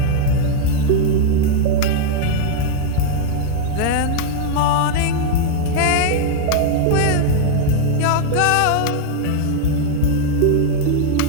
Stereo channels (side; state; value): both; different; correlation 0.00